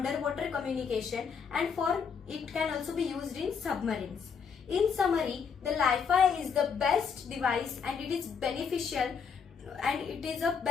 communication, and for it can also be used in submarines. In summary, the Li-Fi is the best device and it is beneficial, and it is a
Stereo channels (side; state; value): right; quieter; 6.3 dB